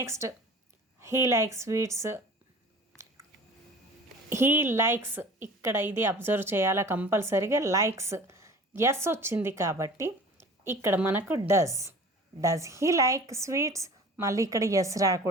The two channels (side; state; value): both; normal; correlation 0.43